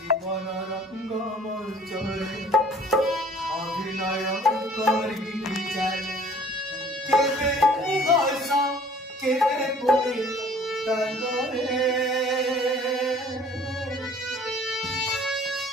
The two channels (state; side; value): normal; both; correlation 0.53